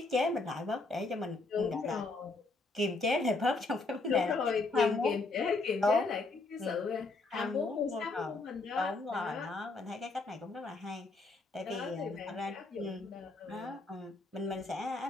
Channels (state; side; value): quieter; right; 3.5 dB